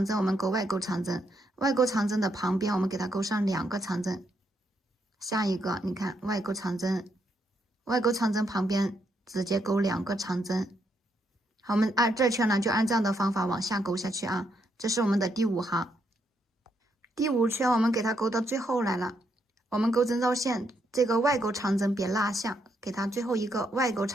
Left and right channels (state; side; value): normal; both; correlation 0.77